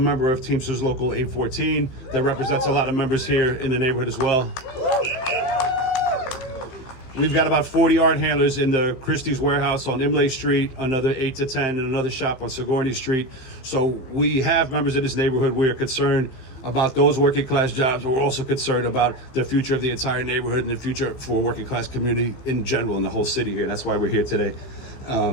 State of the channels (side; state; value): right; late; 15 ms